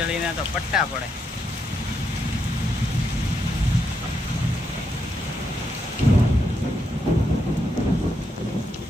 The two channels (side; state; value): both; normal; correlation 0.81